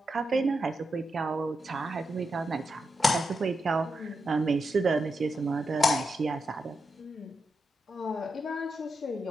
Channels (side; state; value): both; normal; correlation 0.87